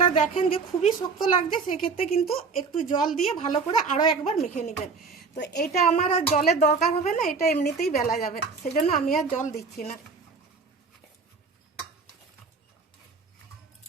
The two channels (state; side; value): quieter; left; 4.8 dB